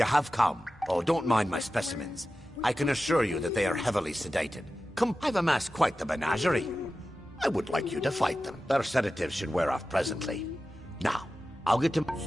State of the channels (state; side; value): normal; both; correlation 0.94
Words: have come. Oh, don't mind my specimens. I can assure you that they are heavily sedated. Come, I've amassed quite the menagerie. I would like you to fight them. Their sedatives should wear off presently. Now, I'll get to...